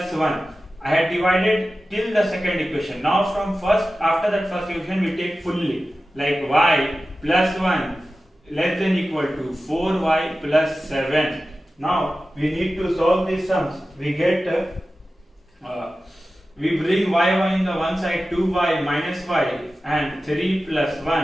1. I had divided till the second equation. Now from after that first equation we take fully, like y plus 1 less than equal to 4y plus 7. Now we need to solve these sums. We get we bring y in the one side, 2y minus y, and 3 plus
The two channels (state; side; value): normal; both; correlation 0.94